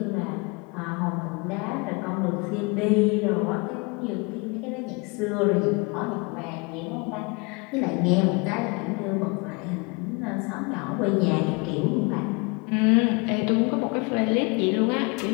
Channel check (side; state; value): right; quieter; 29.9 dB